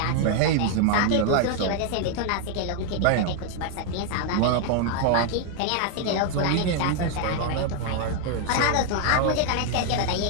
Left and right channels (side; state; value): both; different; correlation 0.00